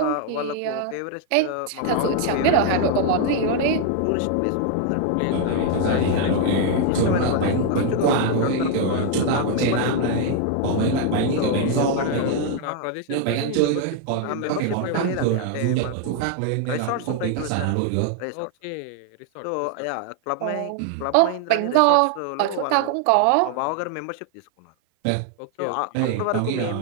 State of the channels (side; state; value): both; different; correlation 0.00